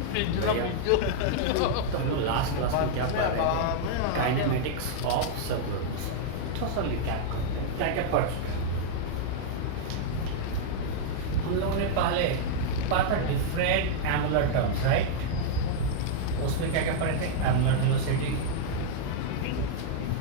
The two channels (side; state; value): both; different; correlation -0.01